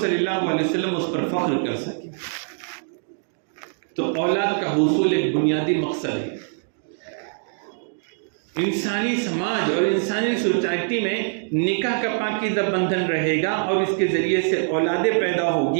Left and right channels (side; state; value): left; silent; digital silence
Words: صلی اللہ علیہ وسلم اس پر فخر کر سکے۔ تو اولاد کا حصول ایک بنیادی مقصد ہے۔ انسانی سماج اور انسانی سوسائٹی میں نکاح کا پاکیزہ بندھن رہے گا اور اس کے ذریعے سے اولادیں پیدا